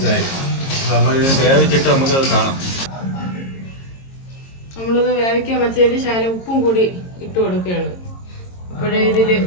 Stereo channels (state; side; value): late; right; 22 ms